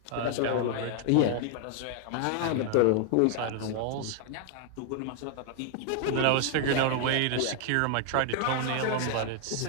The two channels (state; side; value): different; both; correlation 0.00